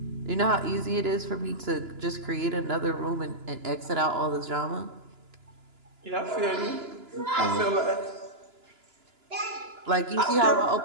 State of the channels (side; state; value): left; late; 2.9 ms